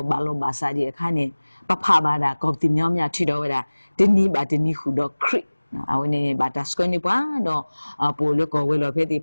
ဘာလို့ဘာစာဒီအခါနေပဖဘာဒါကောတိမြောင်းမြထီတော့ဝဲတာဒီနီဘာဒီနီခုတော့ခရစ်အဝနေဘာတာစကွနေပွားတော့ပိုလကောဝဲလောဖဲတိ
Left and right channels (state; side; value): inverted; both; correlation -1.00